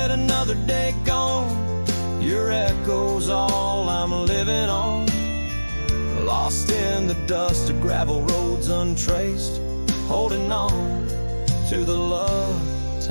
another day gone, your echo's all I'm living on. Lost in the dust of gravel roads untraced, holding on to the love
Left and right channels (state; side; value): inverted; both; correlation -1.00